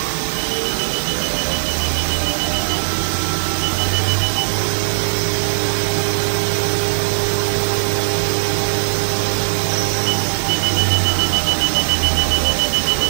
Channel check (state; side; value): silent; left; digital silence